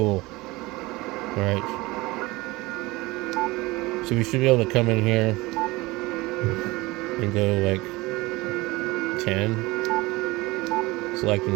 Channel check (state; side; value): quieter; left; 21.6 dB